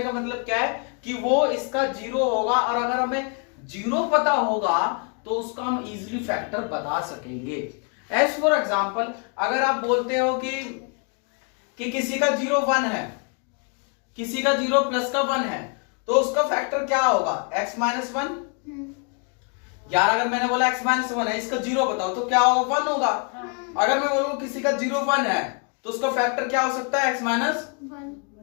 का मतलब क्या है कि वो इसका 0 होगा, और अगर हमें 0 पता होगा तो उसका हम इजीली फैक्टर बता सकेंगे। एज फॉर एग्जांपल, अगर आप बोलते हो कि किसी का 0 1 है, किसी का 0 प्लस का 1 है, तो उसका फैक्टर क्या होगा? x minus 1। यार अगर मैंने बोला x माइनस 1 है, इसका 0 बताओ तो क्या होगा? 1 होगा। अगर मैं बोलूं किसी का 0 1 है तो उसका फैक्टर क्या हो सकता है? x minus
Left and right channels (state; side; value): quieter; right; 37.8 dB